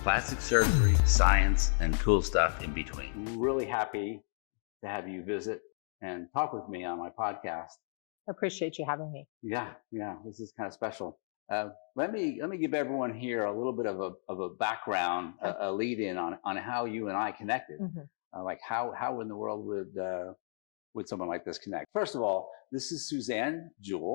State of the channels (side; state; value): right; silent; digital silence